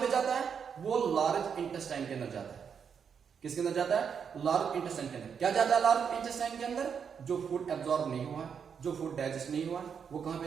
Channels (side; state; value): left; quieter; 7.0 dB